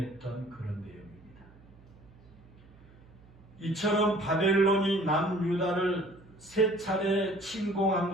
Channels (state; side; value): noise; right; hum, 25 dB below the sound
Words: 그런 내용입니다. 이처럼 바벨론이 남유다를 세 차례 침공한